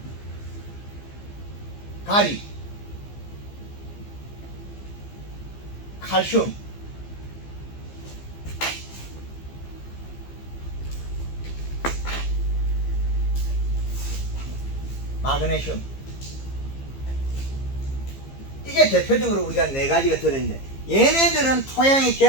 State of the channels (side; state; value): right; late; 15 ms